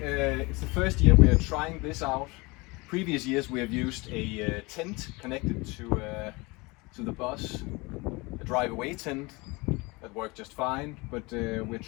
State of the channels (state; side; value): quieter; right; 25.2 dB